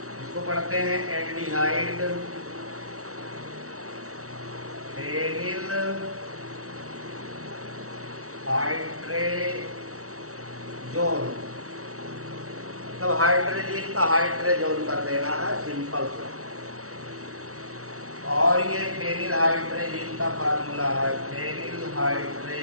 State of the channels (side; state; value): left; late; 0.64 ms